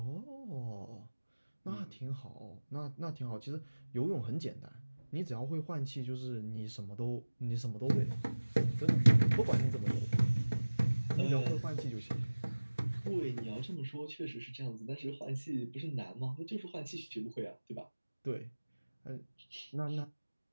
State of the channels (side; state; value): both; inverted; correlation -1.00